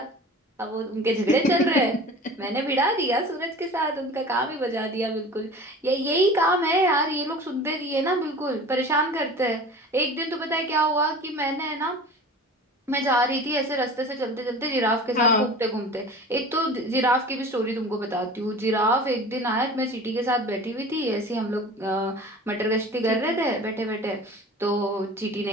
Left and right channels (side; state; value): both; normal; correlation 0.39